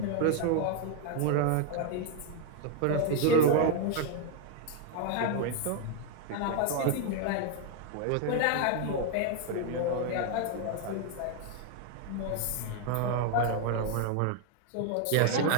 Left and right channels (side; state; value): both; different; correlation 0.01